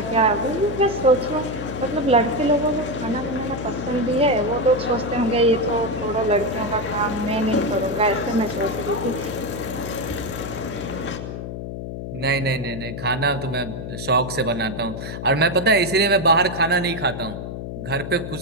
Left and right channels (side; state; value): left; noise; hum, 7 dB below the sound